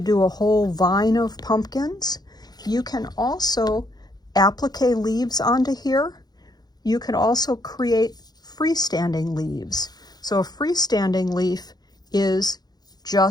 do a whole vine of pumpkins. You can also applique leaves onto here. You can also create freestanding leaves. So a freestanding leaf is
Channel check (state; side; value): late; right; 0.19 ms